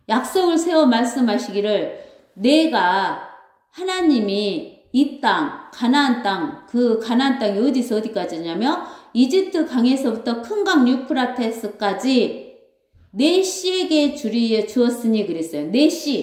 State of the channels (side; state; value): both; identical; correlation 1.00